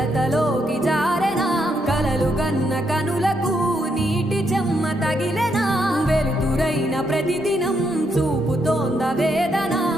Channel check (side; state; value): both; normal; correlation 0.78